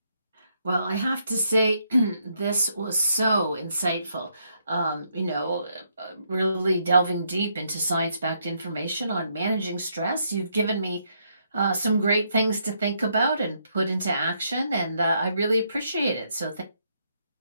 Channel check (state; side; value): inverted; both; correlation -0.75